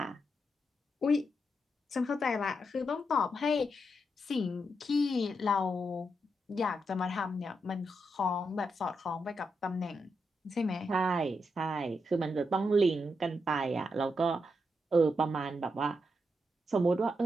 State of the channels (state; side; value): normal; both; correlation 0.83